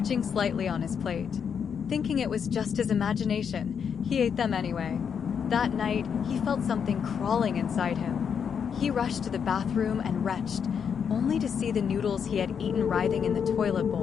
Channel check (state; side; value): quieter; right; 7.2 dB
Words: slightly on his plate. Thinking it was just his imagination, he ate them anyway. That night, he felt something crawling inside him. He rushed to the bathroom and retched, only to see the noodles he had eaten writhing in the toilet